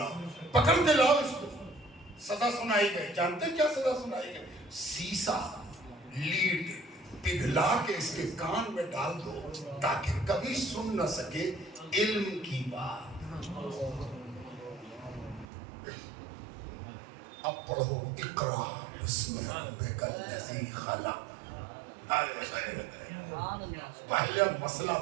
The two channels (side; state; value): left; drops out; at 15.5 s